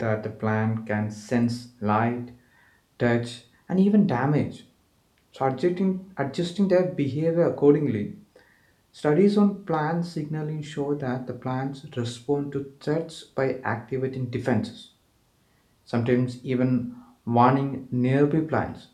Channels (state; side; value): identical; both; correlation 1.00